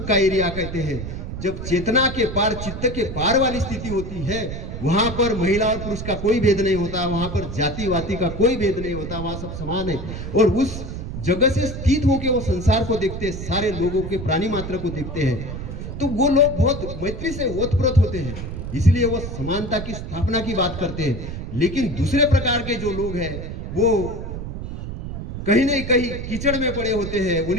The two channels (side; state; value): right; noise; rumble, 7 dB below the sound